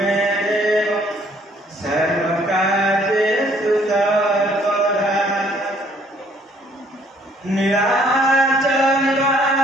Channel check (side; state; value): both; normal; correlation 0.62